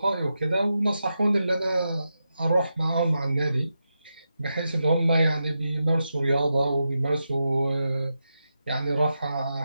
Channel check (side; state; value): both; inverted; correlation -0.88